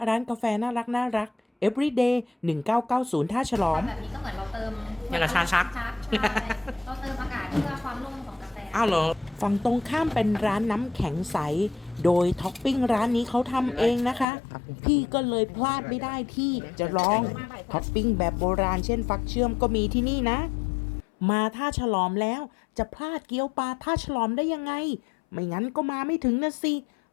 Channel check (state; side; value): drops out; right; at 14.2 s